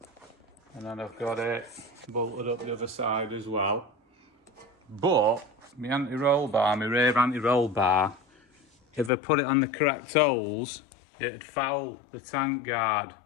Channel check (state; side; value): drops out; right; at 9.1 s